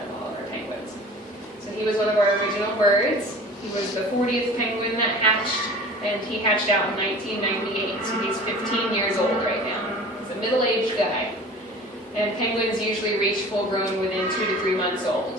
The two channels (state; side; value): normal; both; correlation 0.42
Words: of all of our penguins. So he was one of our original birds. He was the 40th penguin that hatched, and he hatched out in 1998, so he's 15 years old right now. He's a middle-aged guy. And penguins usually reach full grown within 2 to 3 months old,